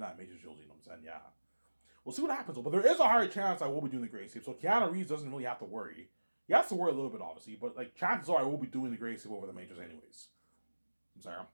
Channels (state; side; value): inverted; both; correlation -1.00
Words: Matrix trilogy, you know what I'm saying? Yeah. We'll see what happens, but there is a higher chance I will be doing the Great Escape. So Keanu Reeves doesn't really have to worry. He has to worry a little bit, obviously, but like chances are I will be doing the Great Escape over the Matrix anyways. I'm sorry.